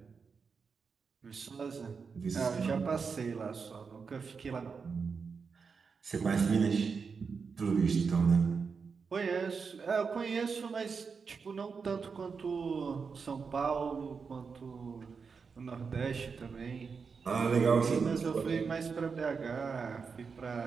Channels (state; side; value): quieter; left; 5.4 dB